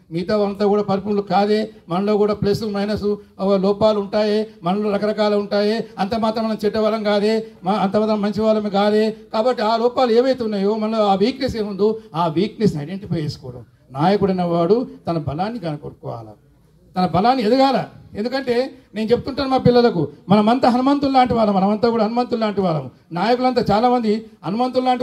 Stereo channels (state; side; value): identical; both; correlation 1.00